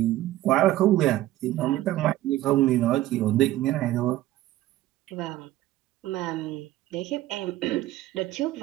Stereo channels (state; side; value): quieter; left; 15.0 dB